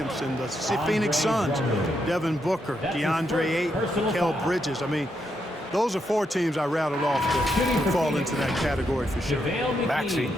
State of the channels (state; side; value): normal; both; correlation 0.80